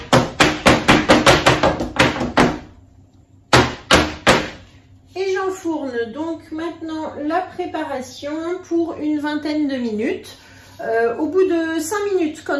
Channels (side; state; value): both; identical; correlation 1.00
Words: Et j'enfourne donc maintenant la préparation pour une vingtaine de minutes. Au bout de 5 minutes,